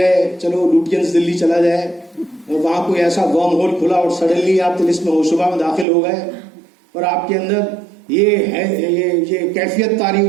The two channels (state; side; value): drops out; left; at 5.9 s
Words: چلو لوٹینس دلی چلا جائے, اور وہاں کوئی ایسا ورم ہول کھلا اور سڈنلی آپ طلسم ہوشبہ میں داخل ہو گئے, اور آپ کے اندر یہ کیفیت طاری